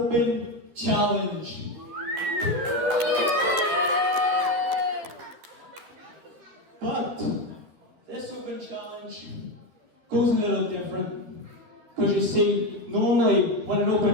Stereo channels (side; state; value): left; late; 12 ms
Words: challenge. But this open challenge goes a little different. Because you see, normally when an